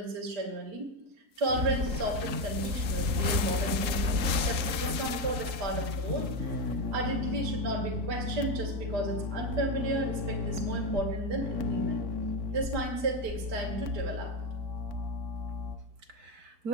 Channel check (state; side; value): late; left; 3.9 ms